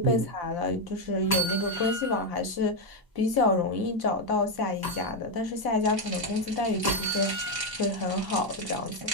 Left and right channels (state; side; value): late; left; 1.0 ms